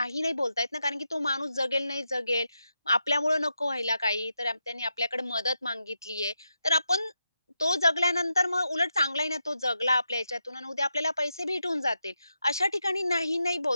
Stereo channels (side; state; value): both; inverted; correlation -0.86